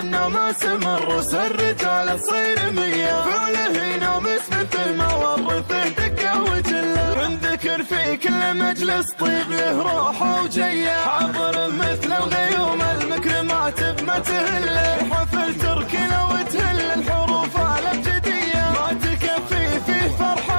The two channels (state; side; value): inverted; both; correlation -1.00